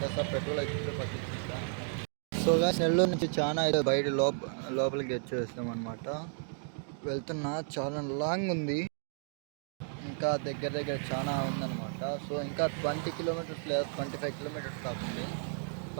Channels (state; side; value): silent; left; 56 dB below the other